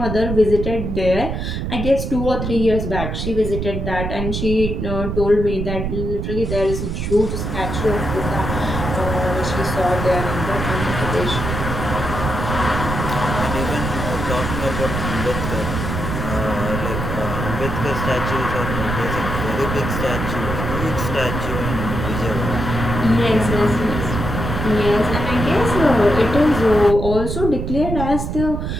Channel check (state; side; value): noise; right; rumble, 3 dB below the sound